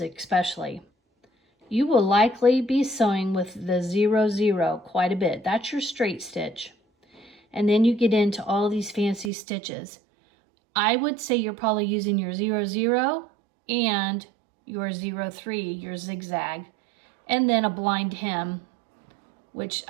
especially. You will likely be sewing with the 0-0 quite a bit. That's your straight stitch. And then you get into all these fancy stitches. I would say you're probably using your 0-0 and your 0-3, your zigzag, and then a blind hem, which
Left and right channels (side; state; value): left; drops out; at 9.3 s